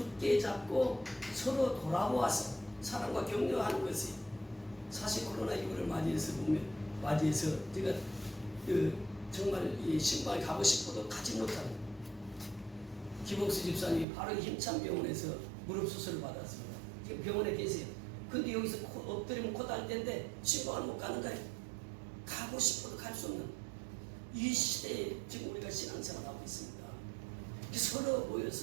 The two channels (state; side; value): drops out; left; at 14.1 s